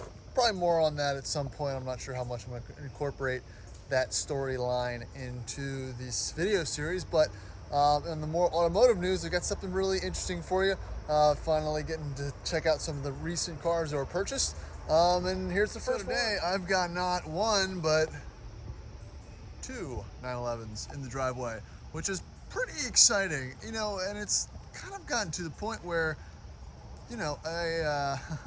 probably more on that at some point. I'm not sure how much I'm going to incorporate that storyline into this video series, but in the more automotive news, I've got something really interesting for you. Finally getting to check out some of the recent cars that were purchased. And here's the first one. Today, I've got not one, but two 911s in the driveway, which is pretty exciting, you know, and it's kind of gotten to the point where, you know, a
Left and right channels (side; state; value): both; identical; correlation 1.00